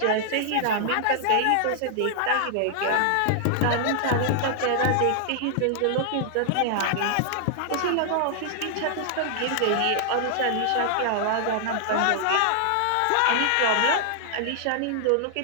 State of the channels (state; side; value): different; both; correlation -0.01